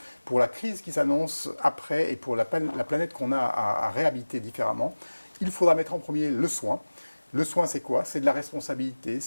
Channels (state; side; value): inverted; both; correlation -1.00